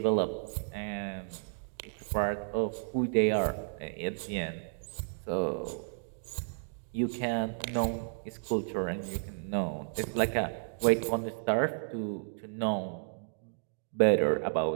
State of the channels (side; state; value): left; silent; digital silence